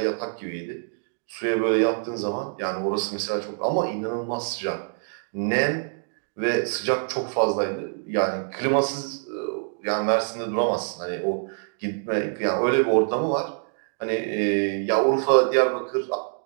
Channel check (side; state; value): left; silent; digital silence